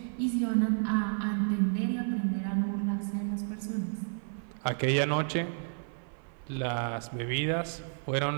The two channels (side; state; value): left; silent; 57 dB below the other